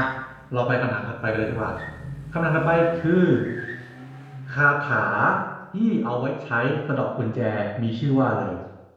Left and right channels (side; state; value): both; identical; correlation 1.00